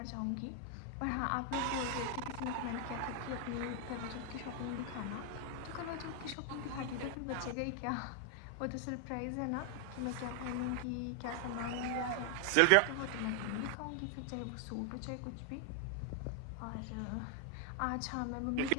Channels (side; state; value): both; different; correlation 0.00